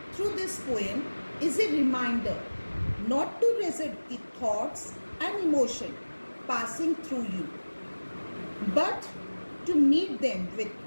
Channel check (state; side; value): inverted; both; correlation -1.00